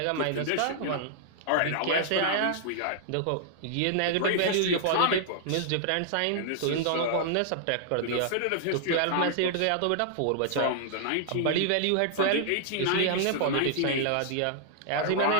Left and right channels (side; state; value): both; different; correlation -0.01